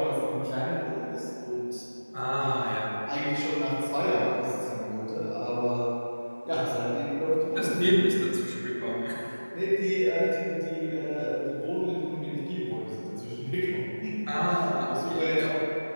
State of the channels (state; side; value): inverted; both; correlation -1.00